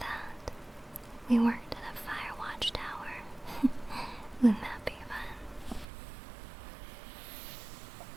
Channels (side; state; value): left; drops out; at 5.9 s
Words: we worked at a fire watch tower. Wouldn't that be fun?